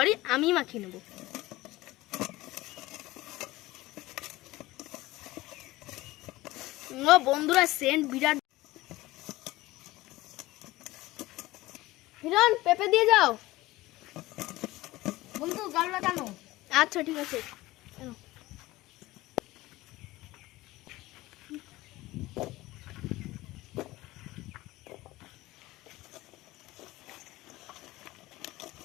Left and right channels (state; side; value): quieter; right; 18.5 dB